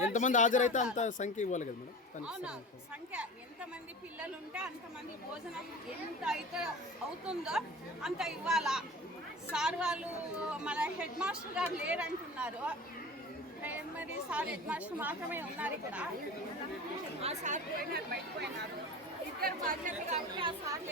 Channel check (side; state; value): both; normal; correlation 0.34